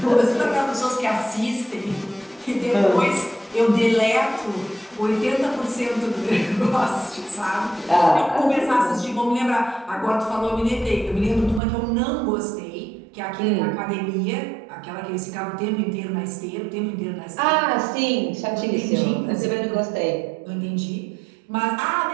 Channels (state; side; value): drops out; left; at 11.6 s